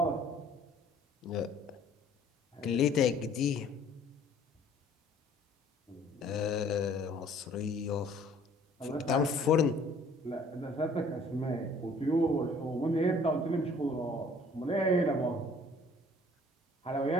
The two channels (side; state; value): both; normal; correlation 0.55